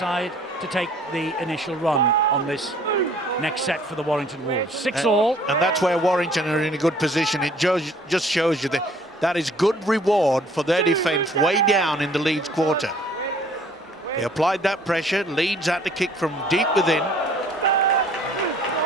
to take the initial run on this next set for the Warrington Wolves. 6-all. And that's where Warrington are in a good position. It just shows you that is good reward for their defence way down in the Leeds quarter. They applied that pressure. Leeds had to kick from deep within.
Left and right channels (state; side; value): normal; both; correlation 0.56